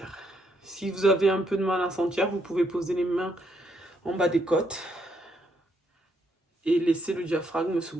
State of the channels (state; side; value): normal; both; correlation 0.74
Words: Si vous avez un peu de mal à sentir, vous pouvez poser les mains en bas des côtes et laisser le diaphragme se